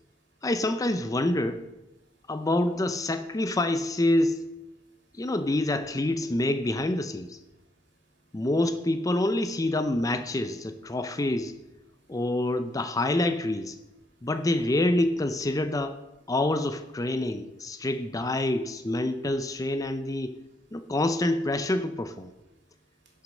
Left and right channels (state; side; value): normal; both; correlation 0.75